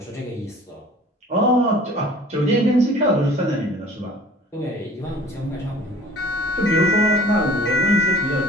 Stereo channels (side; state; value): both; normal; correlation 0.48